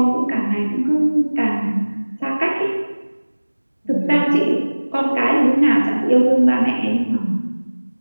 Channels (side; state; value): both; inverted; correlation -1.00